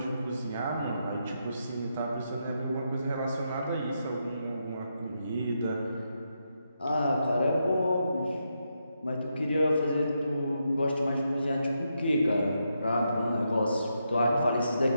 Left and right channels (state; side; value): inverted; both; correlation -0.83